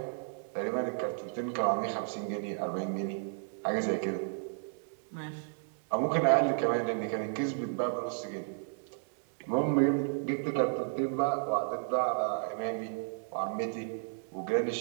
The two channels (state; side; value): silent; left; digital silence